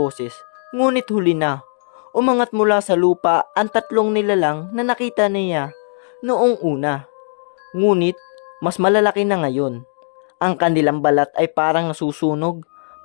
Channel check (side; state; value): right; silent; 67 dB below the other